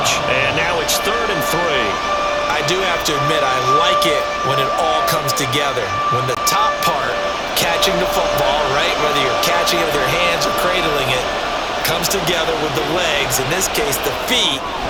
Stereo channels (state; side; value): identical; both; correlation 1.00